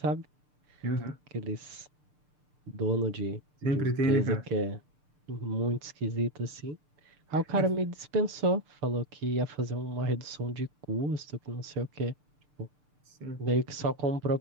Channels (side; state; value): left; late; 6.7 ms